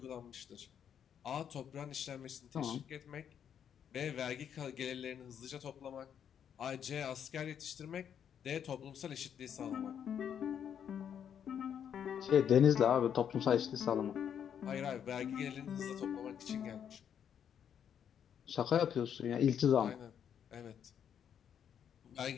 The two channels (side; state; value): right; quieter; 8.6 dB